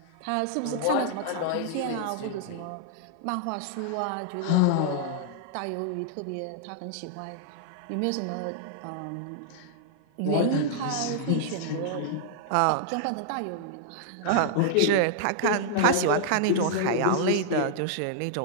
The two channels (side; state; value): both; different; correlation -0.01